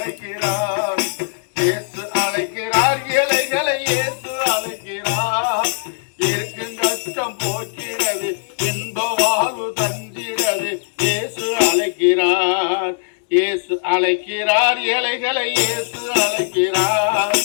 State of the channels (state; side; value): silent; right; digital silence